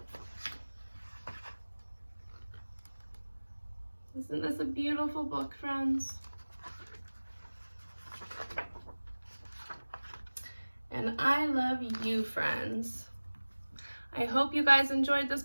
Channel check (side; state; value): both; inverted; correlation -1.00